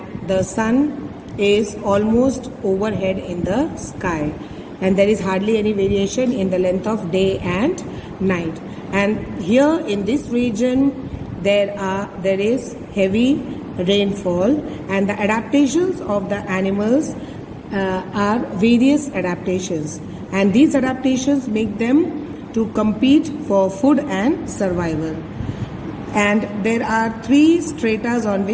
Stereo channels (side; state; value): both; identical; correlation 1.00